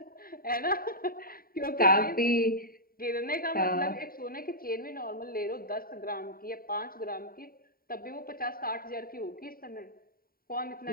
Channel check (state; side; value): late; right; 0.43 ms